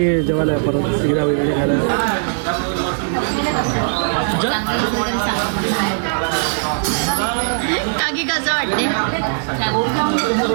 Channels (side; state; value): left; silent; digital silence